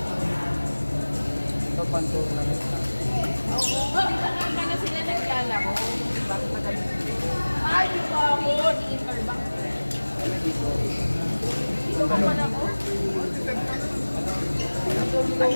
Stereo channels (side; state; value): both; inverted; correlation -1.00